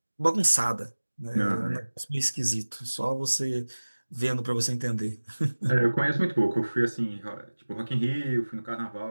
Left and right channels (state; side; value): inverted; both; correlation -1.00